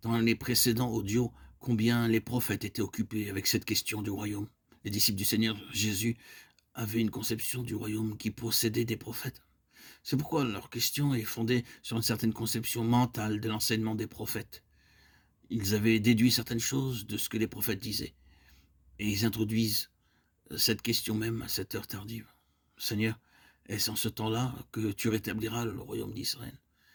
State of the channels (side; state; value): both; identical; correlation 1.00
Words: dans les précédents audios combien les prophètes étaient occupés avec cette question du royaume. Les disciples du Seigneur Jésus avaient une conception du royaume qui possédait des prophètes. C'est pourquoi leur question est fondée sur une certaine conception mentale de l'enseignement des prophètes. Ils avaient déduit certaines choses de ce que les prophètes disaient. Et ils introduisent cette question même à cette heure tardive. Seigneur, est-ce en ce temps-là que tu rétabliras le royaume d'Israël?